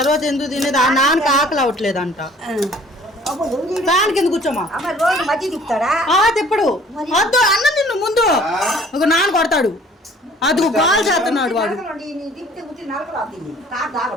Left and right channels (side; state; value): both; normal; correlation 0.53